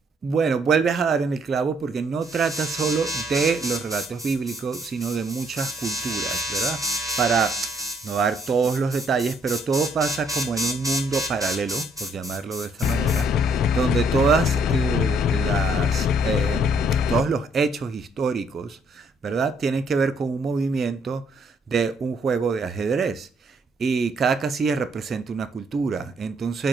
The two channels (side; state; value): both; normal; correlation 0.68